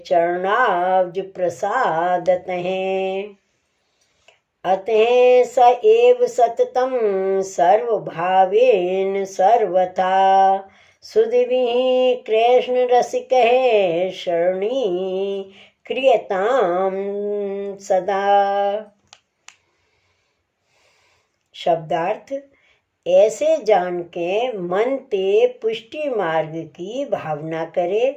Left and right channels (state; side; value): identical; both; correlation 1.00